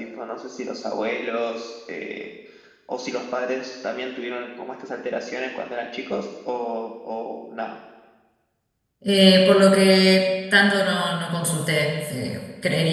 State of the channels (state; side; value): identical; both; correlation 1.00